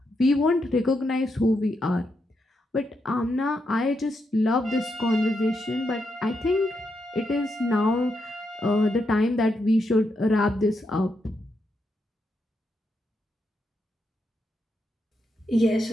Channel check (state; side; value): normal; both; correlation 0.82